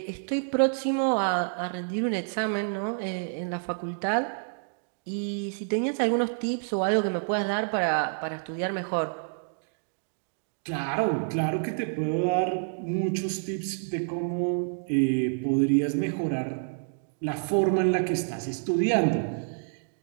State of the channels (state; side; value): silent; left; digital silence